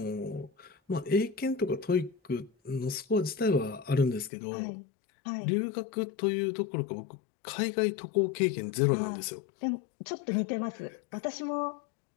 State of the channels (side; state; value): right; drops out; at 4.3 s